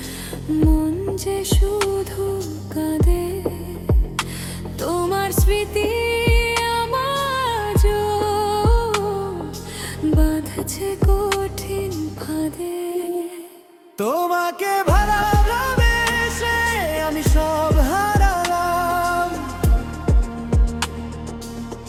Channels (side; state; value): both; identical; correlation 1.00